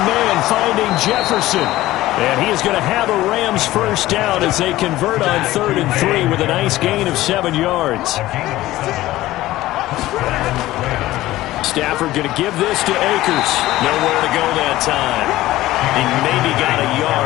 man finding Jefferson. And he is going to have a Rams first down as they convert on 3rd and 3 with a nice gain of 7 yards. Stafford going to give this to Akers. Nowhere to go that time. He maybe got a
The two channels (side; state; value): right; quieter; 16.3 dB